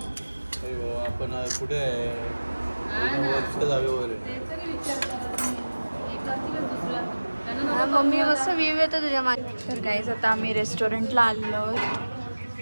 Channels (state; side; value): inverted; both; correlation -1.00